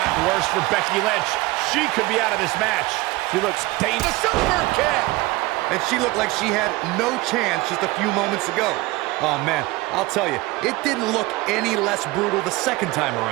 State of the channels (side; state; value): left; quieter; 21.1 dB